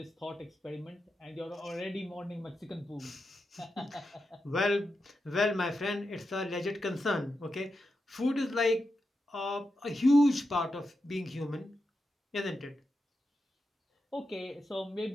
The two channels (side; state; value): both; normal; correlation 0.88